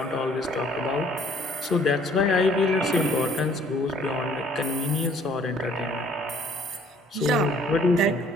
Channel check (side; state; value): both; normal; correlation 0.59